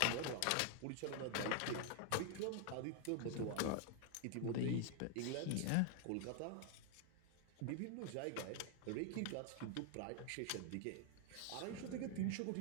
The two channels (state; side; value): different; both; correlation 0.00